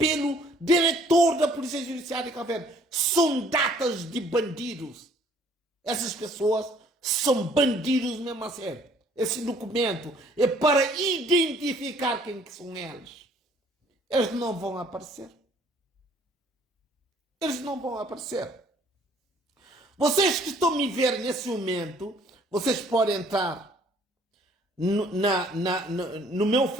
diretor da Polícia Judiciária de Cabo Verde. São datas de bandidos. Essas pessoas são bandidos mesmo a sério. Esse documento é para identificar quem que são eles. Eles não vão aparecer. Eles não vão aparecer. Vocês que estão me ver nesse momento, vocês podem entrar no meu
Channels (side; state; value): both; normal; correlation 0.59